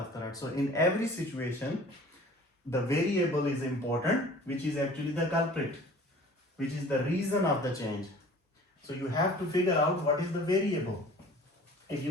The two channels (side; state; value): both; normal; correlation 0.47